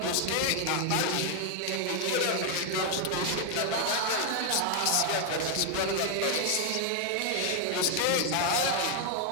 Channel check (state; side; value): different; both; correlation 0.00